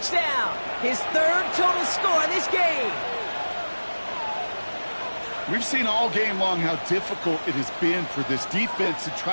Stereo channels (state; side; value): inverted; both; correlation -1.00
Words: His third total score in this game. We've seen all game long how difficult it has been for this defense to